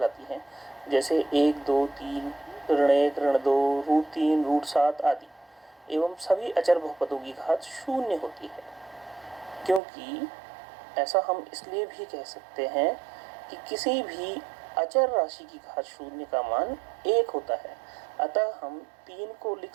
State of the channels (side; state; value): left; drops out; at 9.8 s